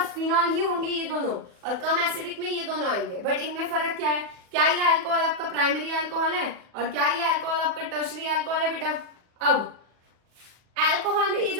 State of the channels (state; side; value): late; left; 40 ms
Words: फिनॉल ही होंगे ये दोनों, और कम एसिडिक में ये दोनों आएंगे। बट इनमें फर्क क्या है? क्या ये अल्कोहल आपका प्राइमरी अल्कोहल है और क्या ये अल्कोहल आपका टर्शरी अल्कोहल है बेटा? अब अल्कोहल में ये